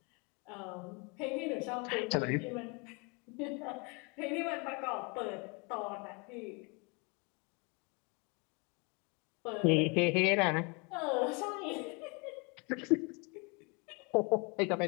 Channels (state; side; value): quieter; right; 31.2 dB